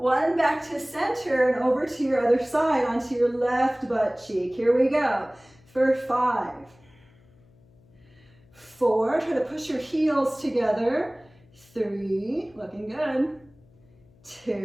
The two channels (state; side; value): noise; left; hum, 29 dB below the sound